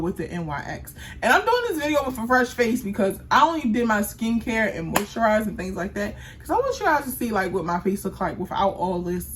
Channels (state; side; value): identical; both; correlation 1.00